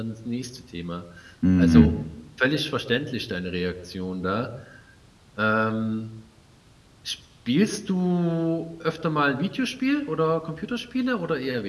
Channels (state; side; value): identical; both; correlation 1.00